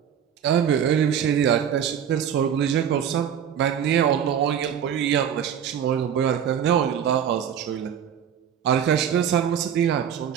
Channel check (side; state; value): left; quieter; 8.6 dB